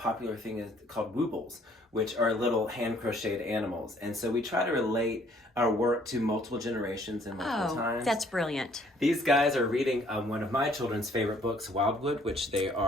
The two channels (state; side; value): normal; both; correlation 0.61